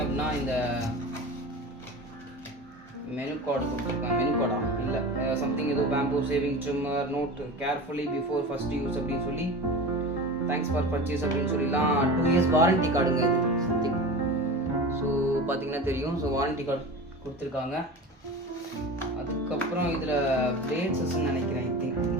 அப்படின்னா இந்த மெனு கார்டு கொடுத்துருக்காங்க. மெனு கார்டா இல்லை, சம்திங் ஏதோ பேம்போ shaving trimmer note carefully before first use அப்படின்னு சொல்லி, தேங்க்ஸ் ஃபார் பர்ச்சேஸ் அப்படின்னு சொல்லிலாம் 2 இயர்ஸ் வாரண்டி கார்டுங்க இது சம்திங். ஸோ பார்த்தீங்கன்னா தெரியும். ஸோ வாரண்டி கார்டு கொடுத்துருக்காங்க. அதுக்கப்புறம் இதில் பிளேட்ஸஸ்ன்னு நினைக்கிறேன், I think.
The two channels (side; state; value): both; normal; correlation 0.31